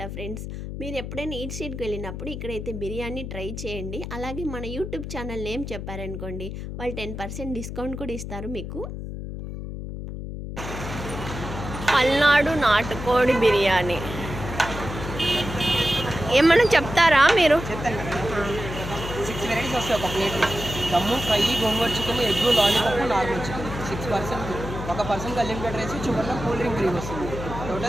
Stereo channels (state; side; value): noise; left; hum, 7 dB below the sound